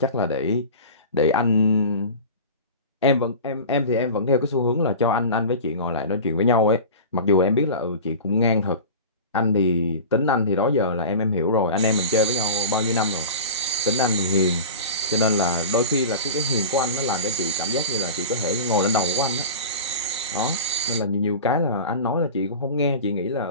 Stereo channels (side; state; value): both; inverted; correlation -0.33